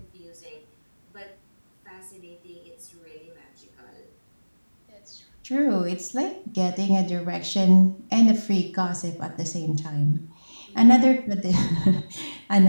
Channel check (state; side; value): inverted; both; correlation -1.00